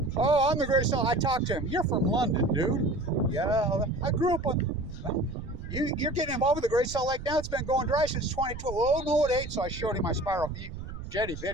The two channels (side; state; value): right; noise; rumble, 10 dB below the sound